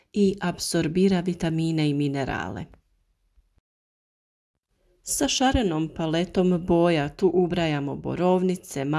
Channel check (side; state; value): both; identical; correlation 1.00